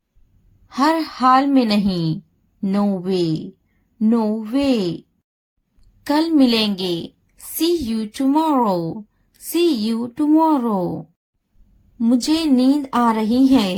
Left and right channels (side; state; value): both; identical; correlation 1.00